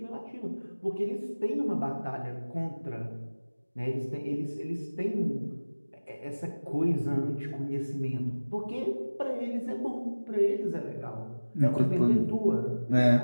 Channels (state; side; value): inverted; both; correlation -1.00